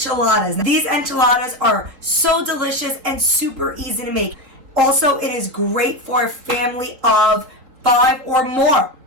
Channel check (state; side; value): late; left; 4.0 ms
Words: These enchiladas are so delicious and super easy to make. Also, it is great for a family of 5 or more